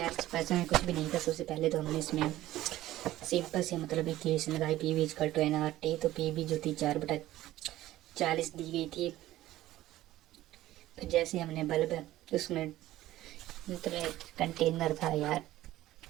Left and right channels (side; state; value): left; quieter; 15.2 dB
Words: इस पैसे में कुछ भी नहीं था। सबसे पहले तो हमने इसमें सिंपल से मतलब इक्वेशन लगाई, P V equal to N R T. तो पी वी जो थी 4/40 दी गई थी। फिर जैसे हमने बल्ब उसमें मतलब कंटेनर था यार,